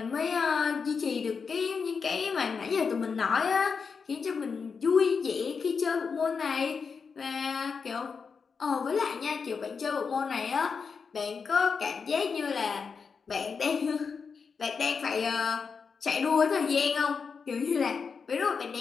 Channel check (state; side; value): quieter; right; 5.5 dB